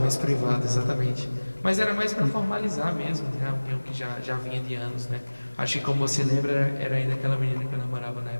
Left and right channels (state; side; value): inverted; both; correlation -1.00